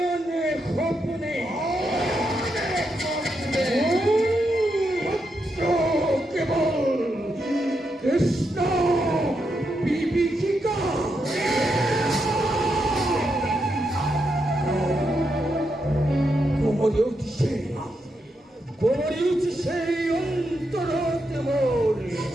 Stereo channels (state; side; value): normal; both; correlation 0.83